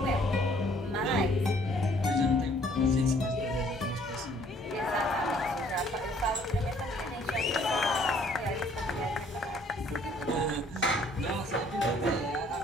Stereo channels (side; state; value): both; normal; correlation 0.60